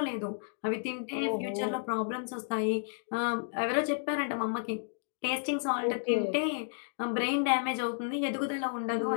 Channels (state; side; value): silent; right; digital silence